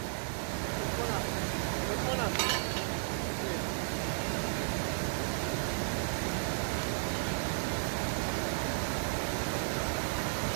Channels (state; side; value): silent; left; 55 dB below the other